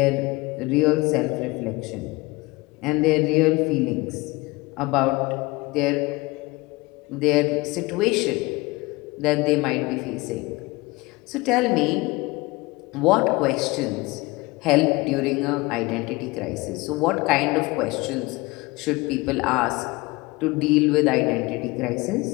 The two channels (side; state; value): right; quieter; 22.9 dB